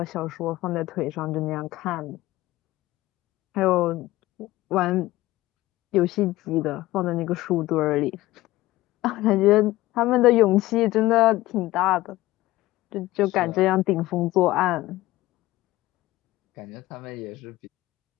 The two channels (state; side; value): quieter; right; 17.4 dB